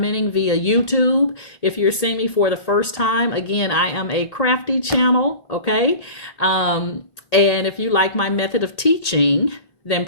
via YouTube. If you're seeing me for the first time, again, I am a crafty channel, okay? And if you like my method of teaching, then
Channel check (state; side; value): late; right; 1.8 ms